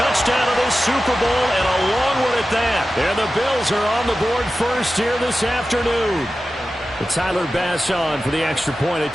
of this Super Bowl and a long one at that. And the Bills are on the board first here this afternoon. But Tyler Bass on for the extra point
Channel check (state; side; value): normal; both; correlation 0.94